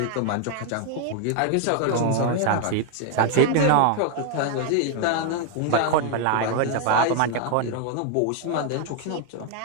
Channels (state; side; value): different; both; correlation 0.01